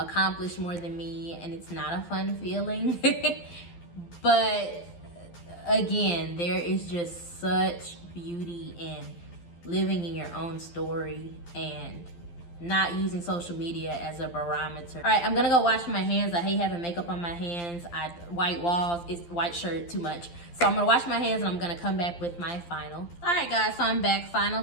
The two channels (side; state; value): right; late; 12 ms